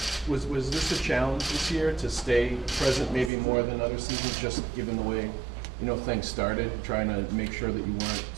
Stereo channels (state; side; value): drops out; left; at 3.3 s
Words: Was this a challenge this year to stay present maybe more than other seasons, just given the way things started, trying to make sure that you weren't